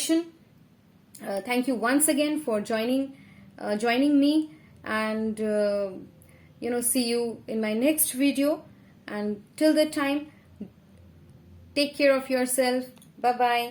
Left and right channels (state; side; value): identical; both; correlation 1.00